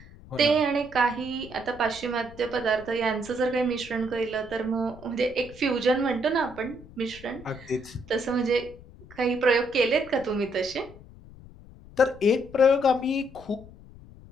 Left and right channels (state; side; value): noise; left; rumble, 20 dB below the sound